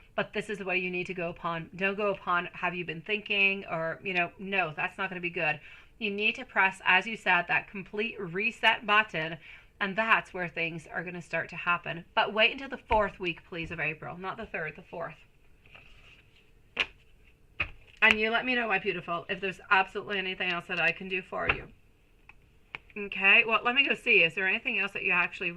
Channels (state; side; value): identical; both; correlation 1.00